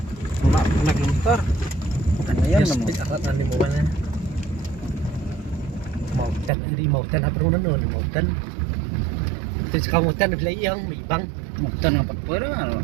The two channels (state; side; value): drops out; left; at 6.5 s